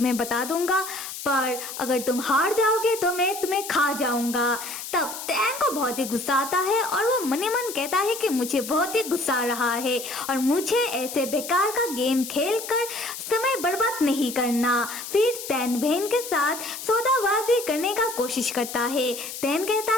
बता दूंगा, पर अगर तुम हार जाओगे तो मैं तुम्हें खा जाऊंगा। तब टैन को बहुत ही गुस्सा आता है और वो मन ही मन कहता है कि मुझे बहुत ही गुस्सा आ रहा है और मुझे ऐसे बेकार का गेम खेलकर समय बर्बाद नहीं करना। फिर टैन वेन के साथ सौदाबाजी करने का कोशिश करता है। टैन कहता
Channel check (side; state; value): left; noise; hiss, 9 dB below the sound